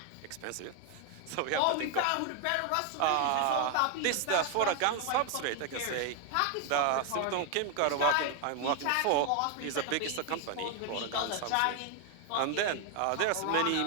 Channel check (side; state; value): both; different; correlation 0.01